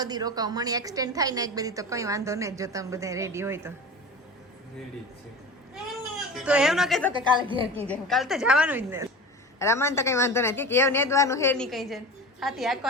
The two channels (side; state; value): both; normal; correlation 0.32